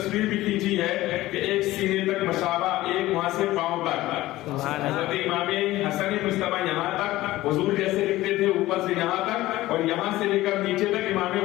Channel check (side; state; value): right; quieter; 16.8 dB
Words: بھی کھینچی ہے کہ ایک سینے تک مشابہ, ایک وہاں سے پاؤں تک. حضرت امام حسن مجتبی یہاں تک حضور جیسے دکھتے تھے, اوپر سے یہاں تک, اور یہاں سے لے کر نیچے تک امام